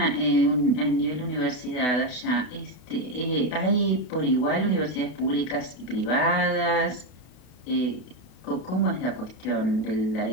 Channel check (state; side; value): late; right; 32 ms